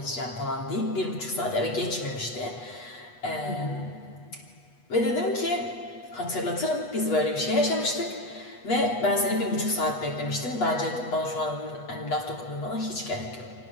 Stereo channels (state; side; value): late; right; 8.2 ms